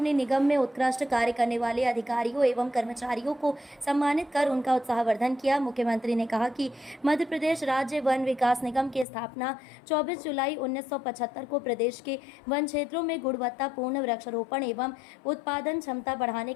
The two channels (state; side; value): drops out; right; at 9.1 s